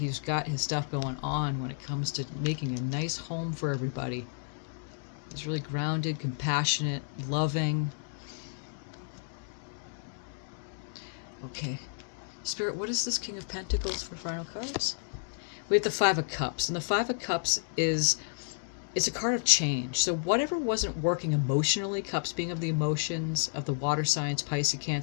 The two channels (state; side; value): silent; right; digital silence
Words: got his stuff going on when it comes to making a nice home for everybody. He's really grounded, compassionate, loving. Okay. Spirit, what is this King of Pentacles for final cards? We have the Five of Cups. And the Five of Cups it's a card of change. So whatever wasn't working emotionally, Cups being of the emotions of the water signs, Pisces,